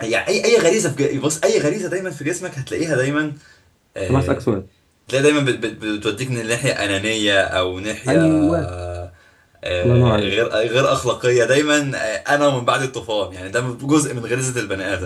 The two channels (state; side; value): identical; both; correlation 1.00